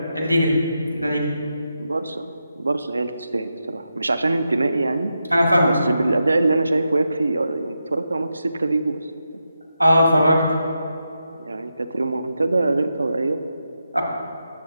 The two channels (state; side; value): inverted; both; correlation -0.87